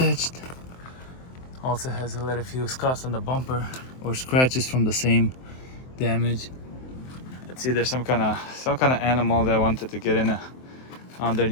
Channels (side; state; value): right; late; 23 ms